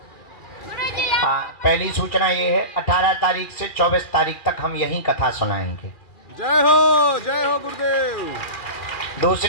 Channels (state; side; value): late; right; 2.4 ms